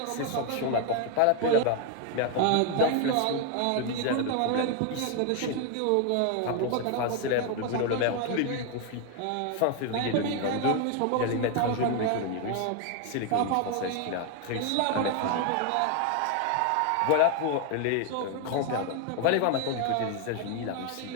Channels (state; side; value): different; both; correlation 0.01